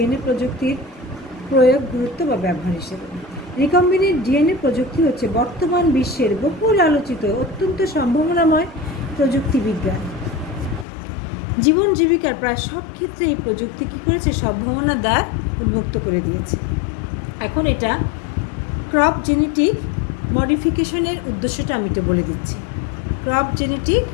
প্রযুক্তির প্রয়োগ, গুরুত্ব বা ব্যবহার হিসেবে। রিকম্বিনেন্ট ডিএনএ প্রযুক্তি হচ্ছে বর্তমান বিশ্বের বহুল আলোচিত অত্যন্ত সম্ভাবনাময় প্রযুক্তি বিজ্ঞান। জীবন জীবিকার প্রায় সব ক্ষেত্রে এই প্রযুক্তি কী করেছে, সম্ভাবনার দ্বার উন্মুক্ত করে দিয়েছে। এখন এটা ক্রপ জেনেটিক মডিফিকেশনের উদ্দেশ্যটা আমি একটু বলে দিচ্ছি। ক্রপ জেনেটিক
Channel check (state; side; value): drops out; right; at 10.9 s